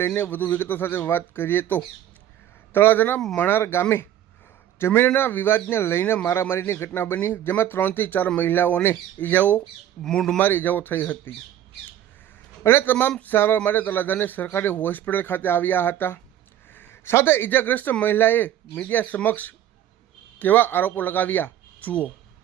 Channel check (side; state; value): left; quieter; 11.4 dB